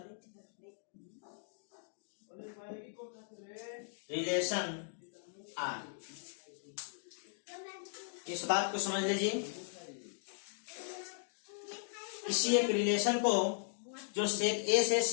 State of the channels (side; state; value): right; silent; digital silence